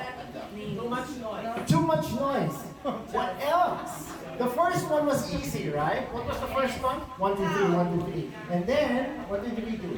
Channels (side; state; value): both; identical; correlation 1.00